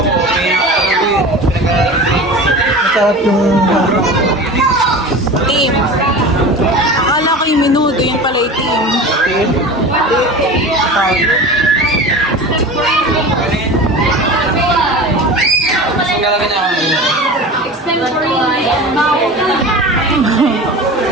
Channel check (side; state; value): both; normal; correlation 0.33